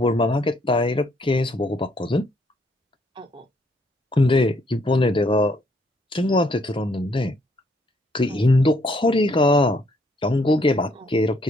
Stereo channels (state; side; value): normal; both; correlation 0.69